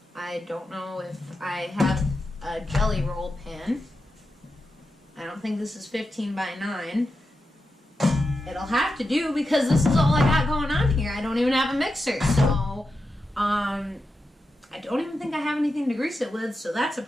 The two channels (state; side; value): normal; both; correlation 0.88